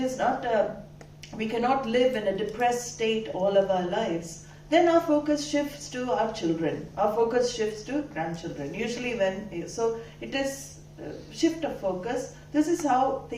not we cannot live in a depressed state all of our lives. Then our focus shifts to our children. Our focus shifts to grandchildren. Usually so it is shift of focus. This is how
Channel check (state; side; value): identical; both; correlation 1.00